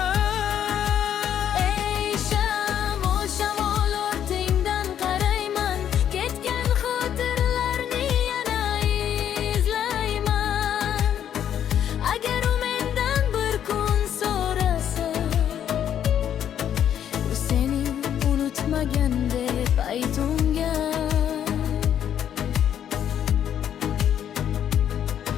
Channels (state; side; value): quieter; right; 9.7 dB